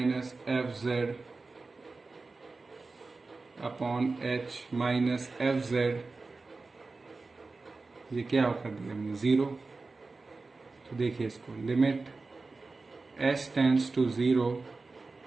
F Z upon H minus F Z, ये क्या कर दिया हमने, 0। तो देखिए इसको, limit h tends to 0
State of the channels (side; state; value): left; quieter; 3.8 dB